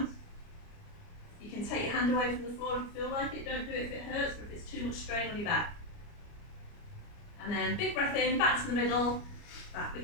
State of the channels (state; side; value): late; right; 29 ms